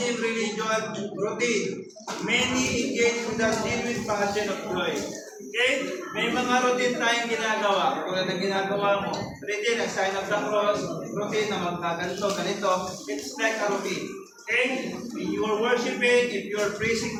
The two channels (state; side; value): identical; both; correlation 1.00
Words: religion, routine. Many engage with the genuine passion of joy. Okay? May mga routine tayong ginagawa. Kung ano ginagawa mo, routine, ang sign of the cross, routine na magkaganto, ganito. It's like a routine. Okay? When you are worshiping, if you are praising